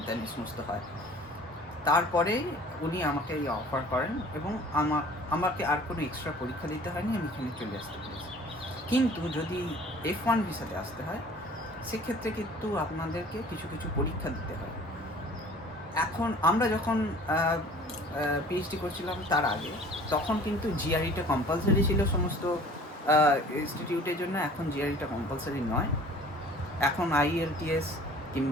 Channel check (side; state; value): both; normal; correlation 0.49